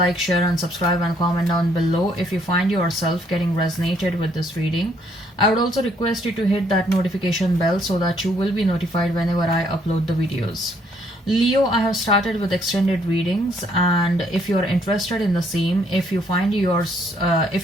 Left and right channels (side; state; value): both; normal; correlation 0.68